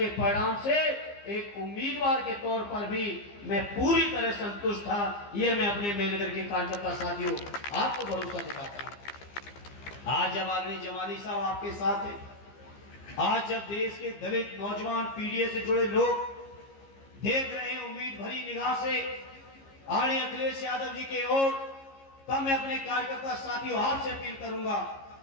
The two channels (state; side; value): late; right; 15 ms